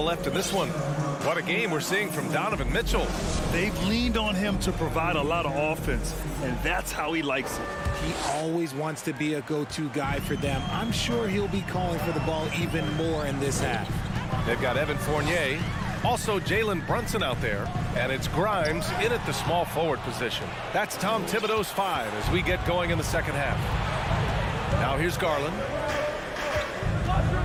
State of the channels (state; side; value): identical; both; correlation 1.00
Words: left in this one. What a game we're seeing from Donovan Mitchell. They've leaned on him to provide a lot of offense, and that's how he likes it. He always wants to be a go-to guy for them. I'm sure he'll be calling for the ball even more in this half. They've got Evan Fournier, also Jalen Brunson out there, and it's Grimes in at the small forward position. That's Tom Thibodeau's 5 as we get going in the second half. Now here's Garland.